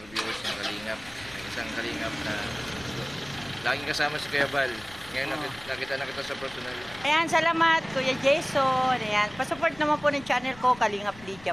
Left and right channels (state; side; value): noise; left; rumble, 20 dB below the sound